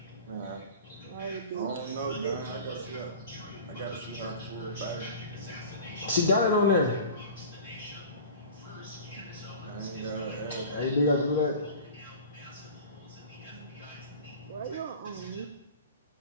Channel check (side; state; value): both; inverted; correlation -0.38